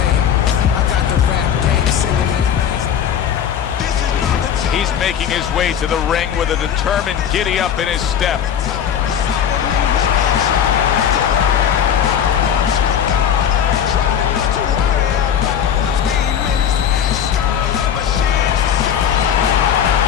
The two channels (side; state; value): right; quieter; 8.7 dB